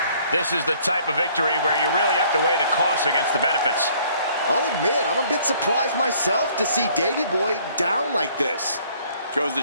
This is the type of victory where you really have to weigh the costs against the benefits. I'll admit, I'm a bit surprised myself to see Davey Boy down like this. Goes to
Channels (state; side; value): inverted; both; correlation -0.60